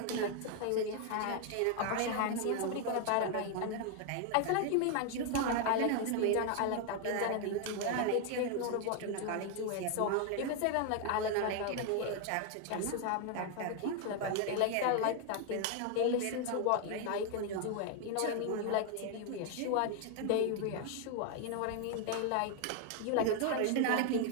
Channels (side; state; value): both; different; correlation 0.01